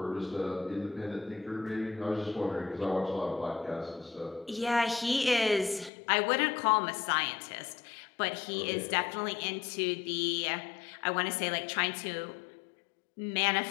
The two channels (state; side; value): drops out; right; at 5.9 s